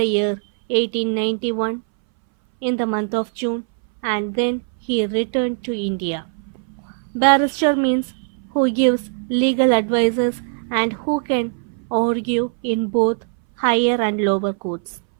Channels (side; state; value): left; silent; 62 dB below the other